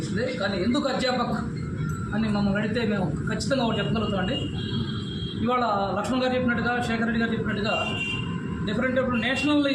కానీ ఎందుకు అధ్యాపక్ అని మమ్మల్ని అడిగితే మేము ఖచ్చితంగా ఒకటి చెప్పగలుగుతామండి. ఇవాళ లక్ష్మణ్ గారు చెప్పినట్టుగా, శేఖర్ రెడ్డి గారు చెప్పినట్టుగా డిఫరెంట్ నేషనల్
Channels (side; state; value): both; identical; correlation 1.00